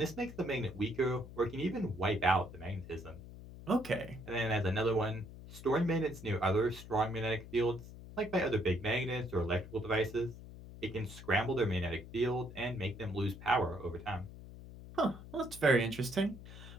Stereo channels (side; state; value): left; noise; hum, 15 dB below the sound